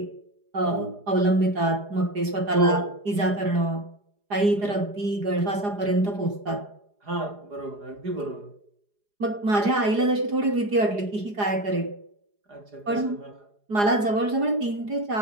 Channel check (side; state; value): left; late; 4.8 ms